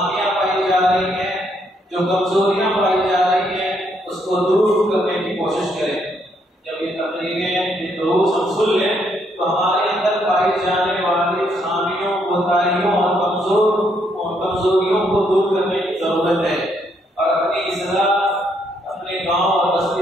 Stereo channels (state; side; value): normal; both; correlation 0.73